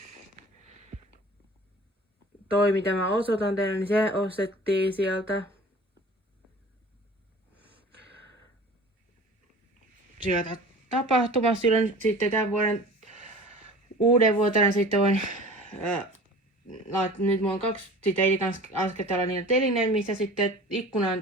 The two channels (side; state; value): both; normal; correlation 0.42